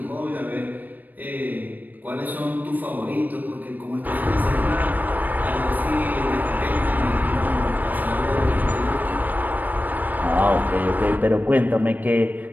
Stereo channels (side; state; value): left; late; 0.085 ms